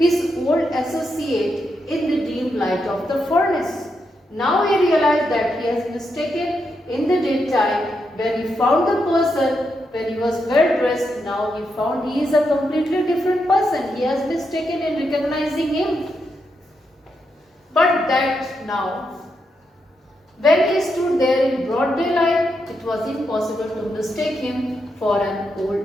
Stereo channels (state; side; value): normal; both; correlation 0.83